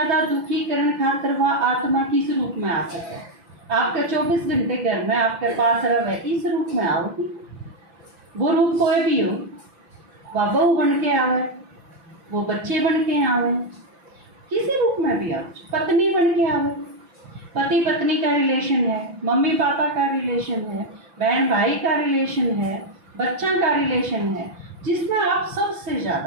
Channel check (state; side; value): late; left; 6.0 ms